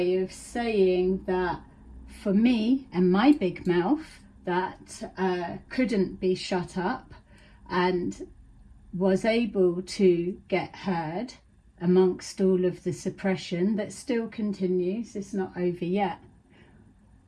of saying that for me and my big mouth that couldn't be shut up and was able to get heard amongst all of the suppression that still continues. It's not over yet.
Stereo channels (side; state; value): both; identical; correlation 1.00